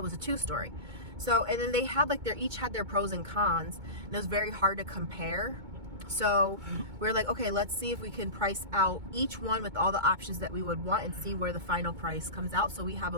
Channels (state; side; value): late; left; 2.2 ms